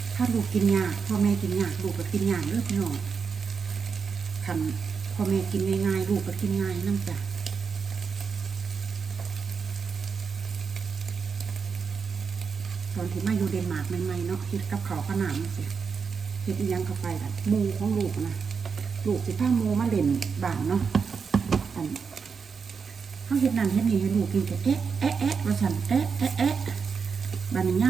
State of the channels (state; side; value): quieter; left; 5.7 dB